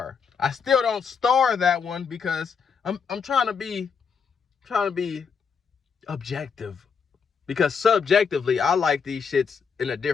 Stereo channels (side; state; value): right; quieter; 6.1 dB